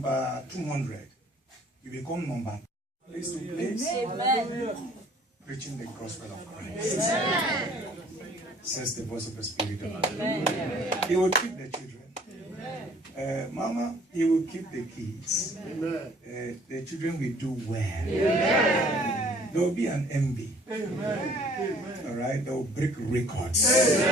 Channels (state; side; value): normal; both; correlation 0.56